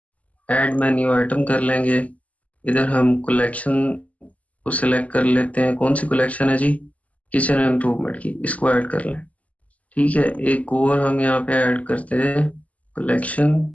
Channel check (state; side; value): late; right; 0.070 ms